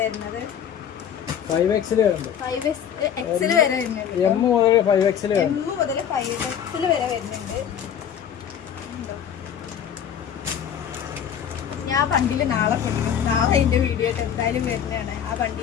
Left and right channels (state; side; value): quieter; right; 8.8 dB